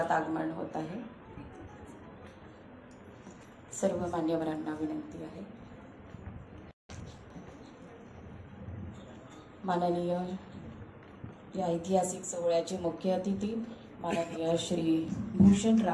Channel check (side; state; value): both; identical; correlation 1.00